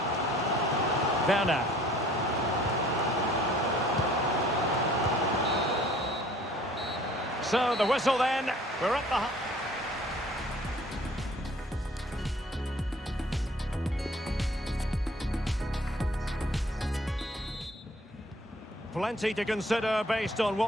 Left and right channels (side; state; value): both; normal; correlation 0.55